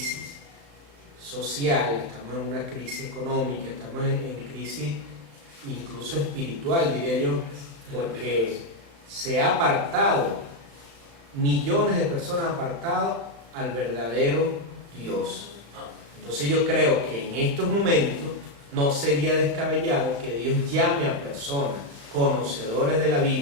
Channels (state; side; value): late; left; 35 ms